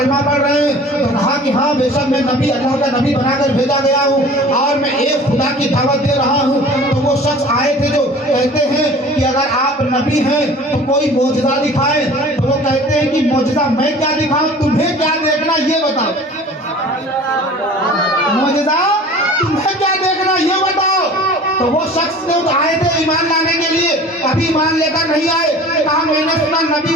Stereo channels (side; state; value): both; normal; correlation 0.44